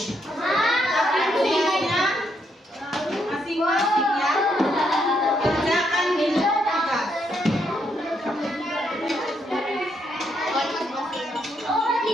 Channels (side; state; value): both; normal; correlation 0.76